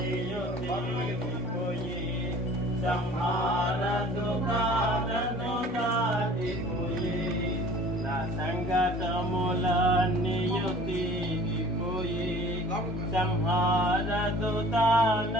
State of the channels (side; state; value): both; normal; correlation 0.47